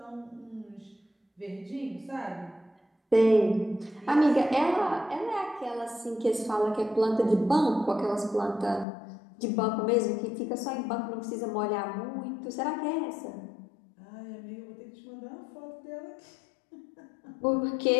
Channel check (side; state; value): right; drops out; at 8.8 s